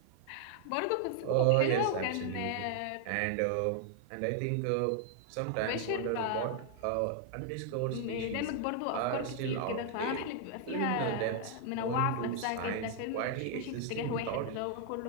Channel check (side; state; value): both; different; correlation 0.00